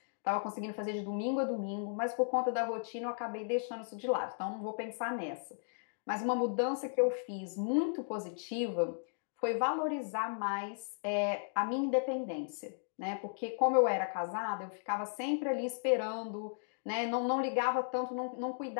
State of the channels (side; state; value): right; silent; digital silence